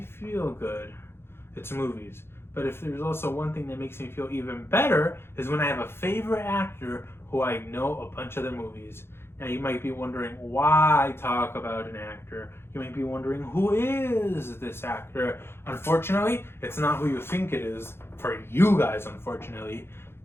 feel good, it's movies. But if there's also one thing that makes me feel even better, is when I have a favorite actor who I know a bunch of their movies. Now you might be wondering why I talk about an actor. You might be wondering, who is this actor? Unfortunately, it's not who you think it is, for you guys, unfortunately.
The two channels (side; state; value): right; late; 0.11 ms